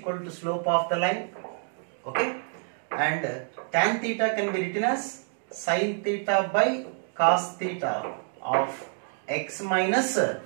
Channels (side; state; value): left; silent; 58 dB below the other